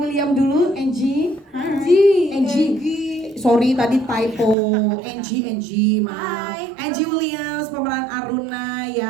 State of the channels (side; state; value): left; drops out; at 4.5 s